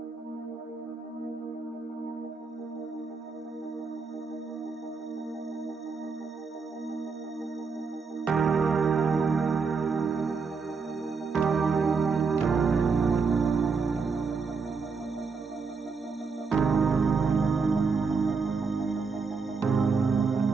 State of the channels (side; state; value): left; quieter; 4.9 dB